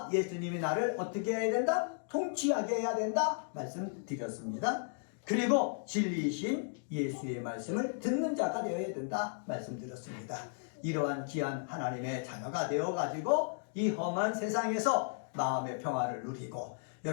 예수님이 나를 어떻게 해야 된다? 통치하게 해야 된다 말씀드렸습니다. 그리고 진리이신 예수의 말씀을 듣는 자가 되어야 된다 말씀드렸습니다. 이러한 귀한 하나님의 자녀가 되어가지고 이 험한 세상에서 마음의 평화를 누리고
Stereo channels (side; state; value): right; silent; digital silence